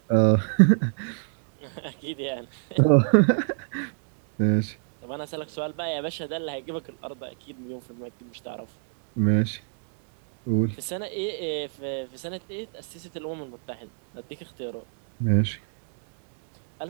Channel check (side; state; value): left; silent; digital silence